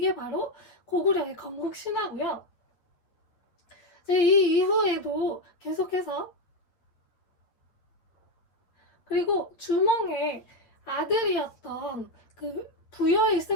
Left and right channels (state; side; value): late; right; 9.1 ms